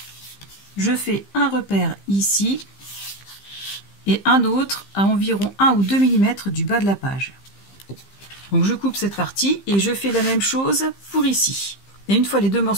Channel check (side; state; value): right; late; 15 ms